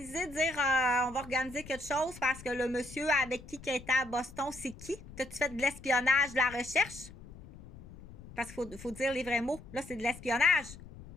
de dire on va organiser quelque chose parce que le monsieur avec qui était à Boston, c'est qui? T'as-tu fait de l'espionnage, de la recherche? Parce qu'il faut dire les vrais mots. Là, c'est de l'espionnage.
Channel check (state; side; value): noise; left; rumble, 17 dB below the sound